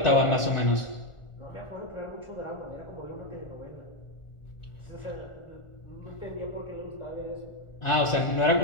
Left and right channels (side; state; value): right; late; 1.4 ms